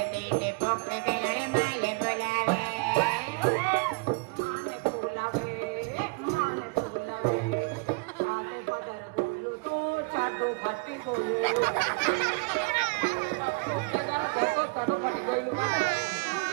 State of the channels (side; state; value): left; quieter; 29.8 dB